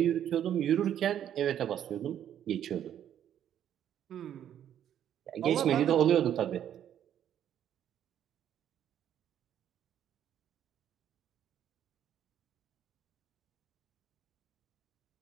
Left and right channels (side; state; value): left; quieter; 10.2 dB